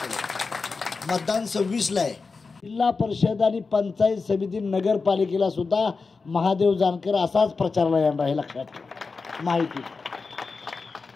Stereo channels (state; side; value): quieter; right; 4.4 dB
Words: मतदान 26ला आहे. जिल्हा परिषद आणि पंचायत समिती नगरपालिकेला सुद्धा महादेव जानकर असाच प्रचारला येणार आहे, लक्षात ठेवा. माहिती